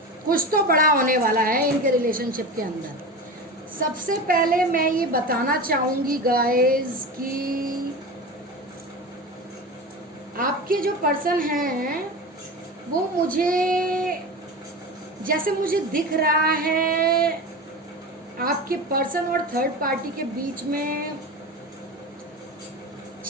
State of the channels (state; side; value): normal; both; correlation 0.28